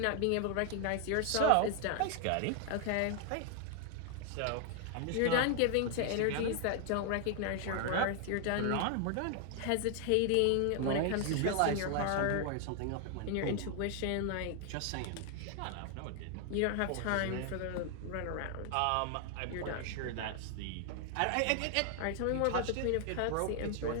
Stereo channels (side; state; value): both; different; correlation 0.00